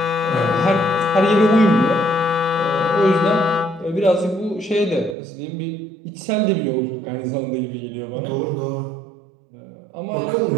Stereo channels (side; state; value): left; drops out; at 5.2 s